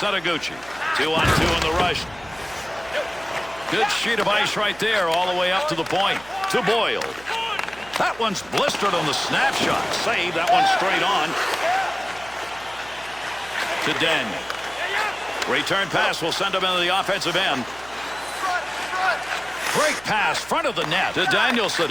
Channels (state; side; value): noise; right; hum, 22 dB below the sound